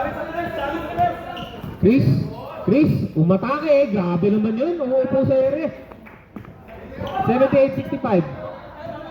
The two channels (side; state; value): both; identical; correlation 1.00